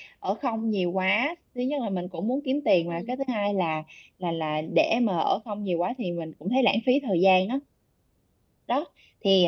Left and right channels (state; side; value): identical; both; correlation 1.00